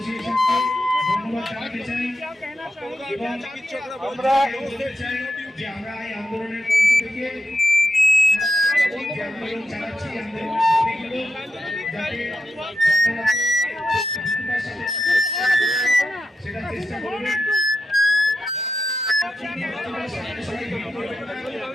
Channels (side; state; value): both; normal; correlation 0.87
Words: ধন্যবাদ জানাতে চাই এবং আমরা বলতে চাই যে আমরা এই আন্দোলনের মঞ্চ থেকে আন্দোলন চালাচ্ছি, সেটা চেষ্টা করবেন।